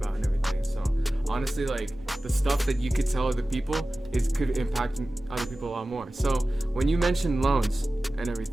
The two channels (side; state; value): both; normal; correlation 0.96